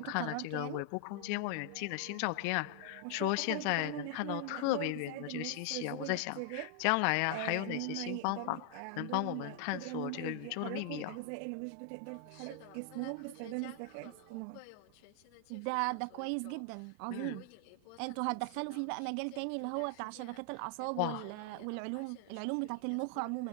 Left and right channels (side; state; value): both; different; correlation 0.00